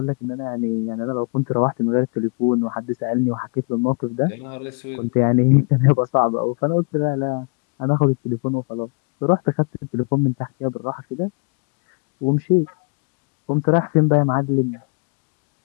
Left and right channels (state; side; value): quieter; right; 34.9 dB